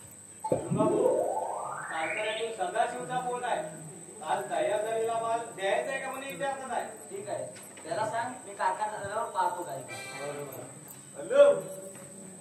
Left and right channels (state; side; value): identical; both; correlation 1.00